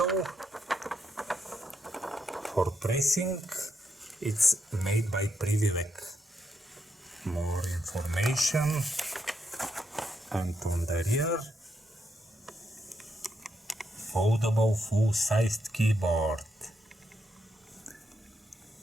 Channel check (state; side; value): normal; both; correlation 0.80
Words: for pressing. It's made by Privivek. More information. And on the rear, foldable full-sized keyboard.